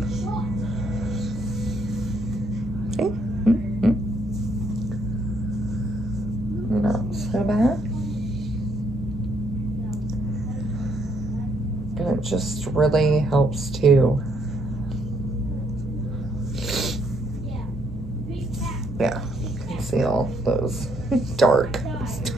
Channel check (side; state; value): both; normal; correlation 0.71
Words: Okay. Not so bad. And it just really helps to, yeah, conceal those dark,